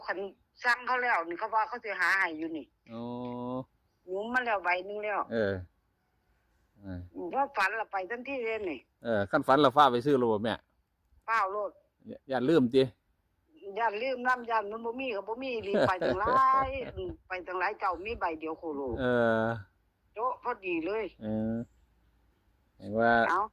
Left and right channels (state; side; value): identical; both; correlation 1.00